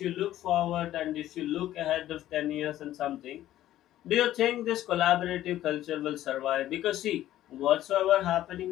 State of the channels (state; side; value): quieter; right; 13.4 dB